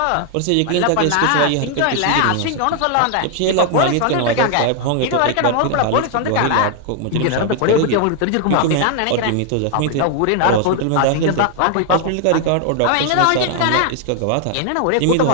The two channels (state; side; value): different; both; correlation 0.00